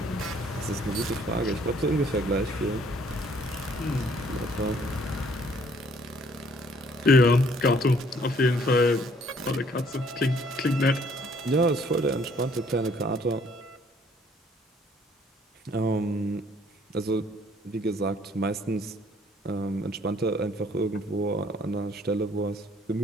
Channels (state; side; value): normal; both; correlation 0.61